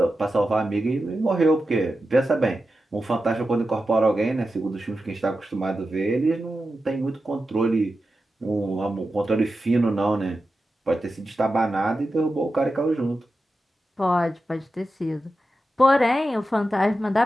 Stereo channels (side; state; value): both; normal; correlation 0.91